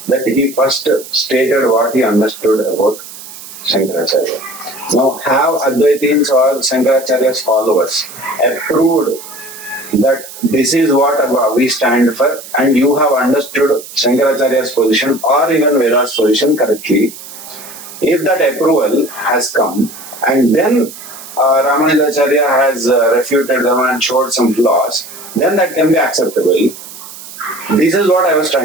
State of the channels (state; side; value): noise; right; hiss, 15 dB below the sound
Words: that he first stated what he understood about Shankaracharya. Now, have Advaitins or Shankaracharya's followers approved that this is what we stand for, and you have understood Shankaracharya's position or even Veda's position correctly? If that approval has come, and then Ramanujacharya has refuted them and showed some flaws, then that can be acceptable. This is what I was